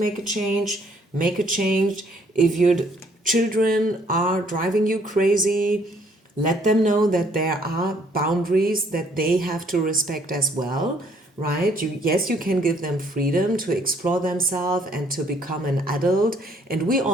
a change, make a change. If your children are driving you crazy, let them know that there are boundaries that they have to respect as well, right? Yes, you can give them freedom to explore themselves and to become an adult. And we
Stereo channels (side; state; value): both; normal; correlation 0.64